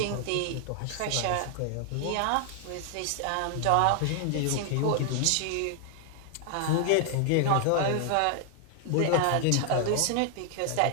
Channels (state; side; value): different; both; correlation 0.00